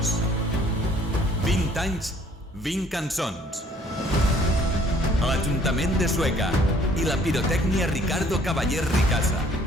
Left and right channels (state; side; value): normal; both; correlation 0.59